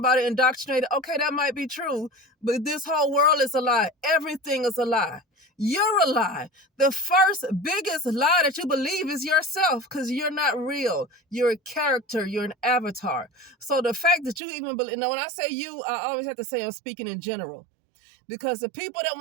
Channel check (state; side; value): drops out; left; at 14.4 s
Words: indoctrinated, okay, that might be true, but this whole world is a lie. Everything is a lie. You're a lie. The first biggest lie that you believe is yourself because you're not real. You're a character. You're an avatar. So the fact that you even believe, when I say you, I always have to say I'm speaking in general. Because the people that